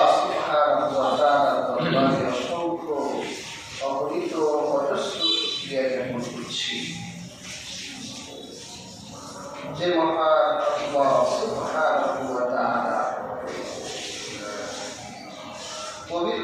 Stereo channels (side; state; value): both; identical; correlation 1.00